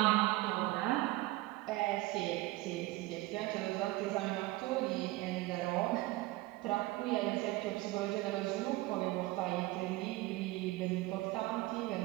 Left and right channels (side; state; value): left; quieter; 19.1 dB